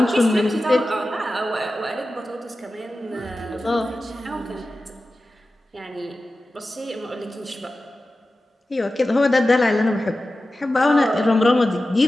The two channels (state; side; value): normal; both; correlation 0.94